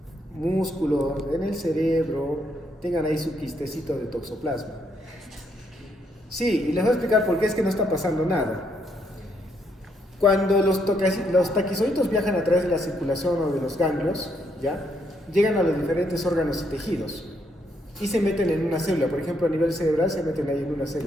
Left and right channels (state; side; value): normal; both; correlation 0.74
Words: músculos, en el cerebro, tengan ahí su quistecito de toxoplasma. Sí, y les voy a explicar por qué es que no está pasando nada. Cuando los taquizoitos viajan a través de la circulación o de los ganglios, ¿ya? Llegan a los diferentes órganos y tejidos y se meten en una célula. Por ejemplo, a nivel cerebral se meten ahí en una